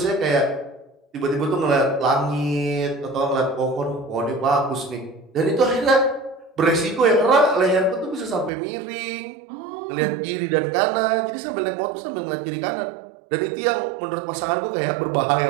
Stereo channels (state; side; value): drops out; left; at 8.5 s